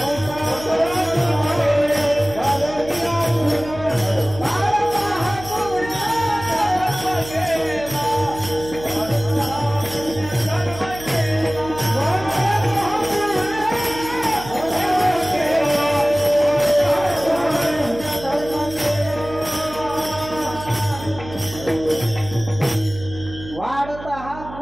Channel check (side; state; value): right; noise; hum, 14 dB below the sound